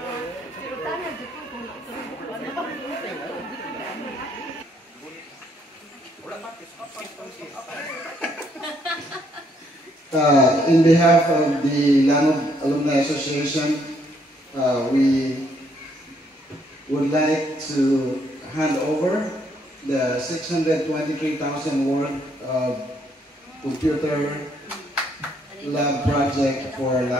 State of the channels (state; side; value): normal; both; correlation 0.70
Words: In behalf of the Langob Alumni Association, we would like to hand over the 623,000 worth of computer lab project for